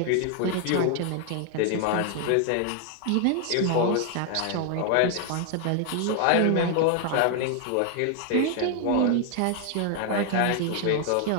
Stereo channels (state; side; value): different; both; correlation 0.00